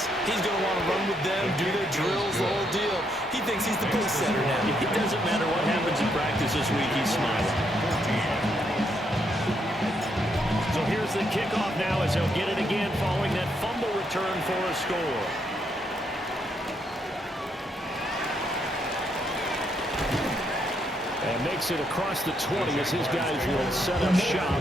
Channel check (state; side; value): normal; both; correlation 0.76